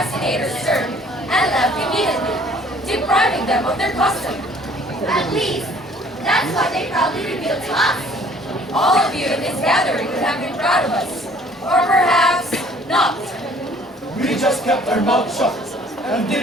turned and left immediately, depriving them of their custom. At least, that's what they proudly revealed to us. All of you in this gathering would have been proud of us, or perhaps not. We just kept our mouths shut and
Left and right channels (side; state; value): both; normal; correlation 0.56